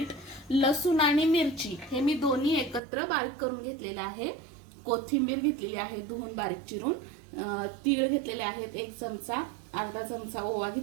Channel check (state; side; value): drops out; left; at 2.8 s